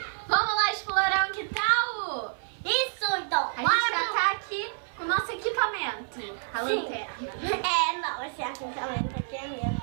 Vamos lá explorar o quintal? Isso, então! A gente já tá aqui com o nosso equipamento. A lanterna. Não, esse equipamento aqui é meu,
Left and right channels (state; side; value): silent; left; 59 dB below the other